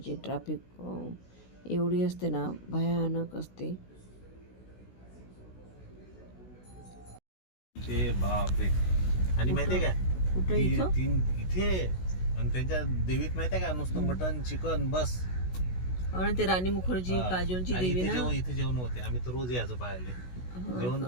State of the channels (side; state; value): right; late; 16 ms